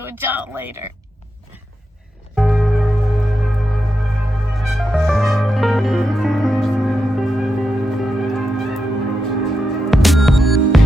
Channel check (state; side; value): normal; both; correlation 0.86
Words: with John later.